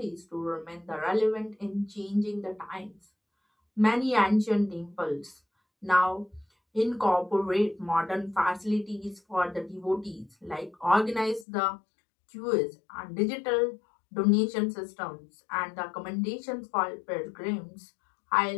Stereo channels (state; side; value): drops out; right; at 11.5 s